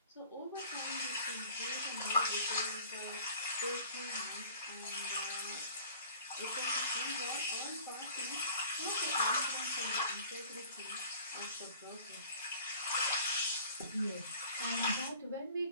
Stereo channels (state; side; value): inverted; both; correlation -0.48